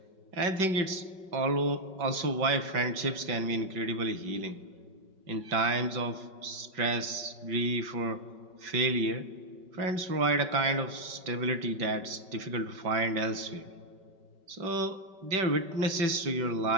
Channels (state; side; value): late; left; 5.3 ms